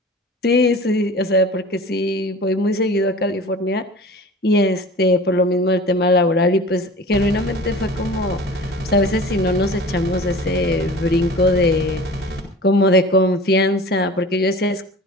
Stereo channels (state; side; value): normal; both; correlation 0.40